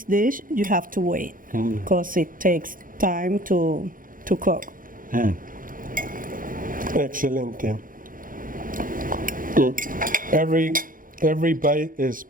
dish, you have to wait because it takes time to cook. Excelente. Every bite is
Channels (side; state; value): left; late; 0.40 ms